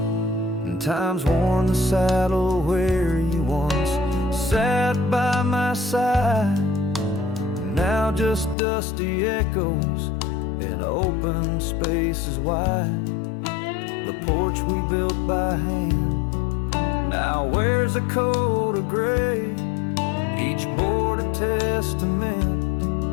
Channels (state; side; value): drops out; right; at 8.6 s